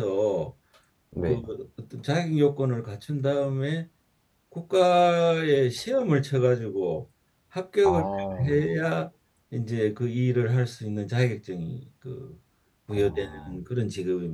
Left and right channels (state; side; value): identical; both; correlation 1.00